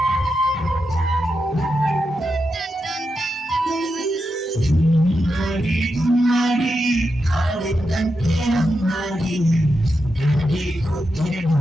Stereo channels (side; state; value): both; normal; correlation 0.87